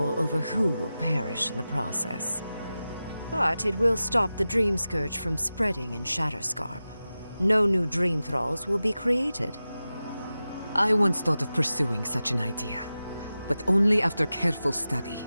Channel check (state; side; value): inverted; both; correlation -0.94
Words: over who will perish in the process. But it will stop the Dream Scourge from spreading in Shatterscarp. No new Dream Thralls will be created. I once thought of pursuing such an idea, but only after careful study.